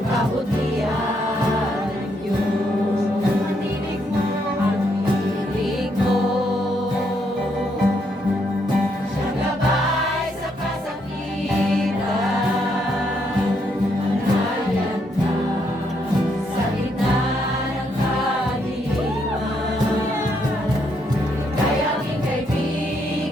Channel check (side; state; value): both; normal; correlation 0.75